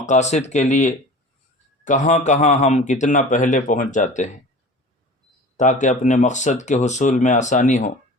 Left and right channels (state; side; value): normal; both; correlation 0.40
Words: کے لیے کہاں کہاں ہم کتنا پہلے پہنچ جاتے ہیں تاکہ اپنے مقصد کے حصول میں آسانی ہو۔